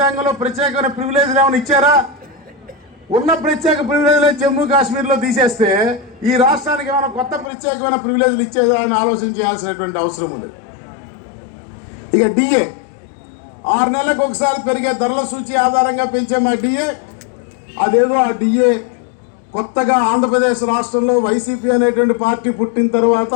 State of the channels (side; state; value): right; drops out; at 7.5 s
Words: ప్రత్యేకమైన ప్రివిలేజ్లు ఏమైనా ఇచ్చారా? ఉన్న ప్రత్యేక ప్రివిలేజ్లే జమ్మూ కాశ్మీర్లో తీసేస్తే ఈ రాష్ట్రానికి ఏమైనా కొత్త ప్రత్యేకమైన ప్రివిలేజ్లు ఇచ్చేదా అని ఆలోచన చేయాల్సినటువంటి అవసరం ఉన్నది. ఇక డిఏ 6 నెలలకు ఒకసారి పెరిగే ధరల సూచి ఆధారంగా పెంచే మా డిఏ, అదేదో ఆ డిఏ కొత్తగా ఆంధ్రప్రదేశ్ రాష్ట్రంలో వైసీపీ అనేటువంటి పార్టీ పుట్టిన తర్వాత,